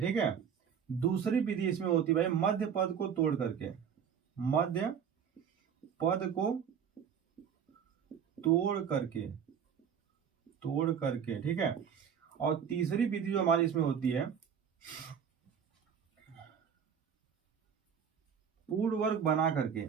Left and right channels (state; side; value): quieter; left; 7.6 dB